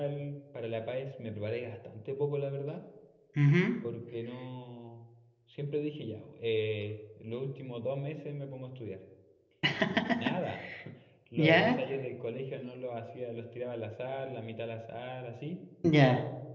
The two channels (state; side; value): identical; both; correlation 1.00